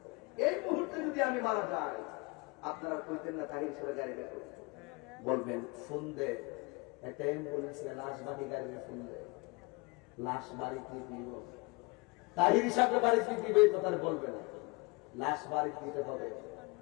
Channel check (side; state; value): right; quieter; 27.5 dB